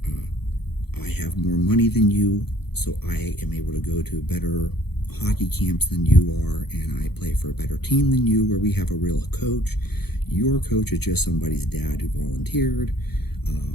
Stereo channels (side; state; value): right; late; 0.97 ms